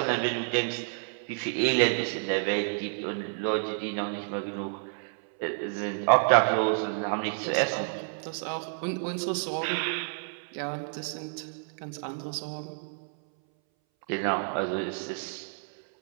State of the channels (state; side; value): silent; left; 58 dB below the other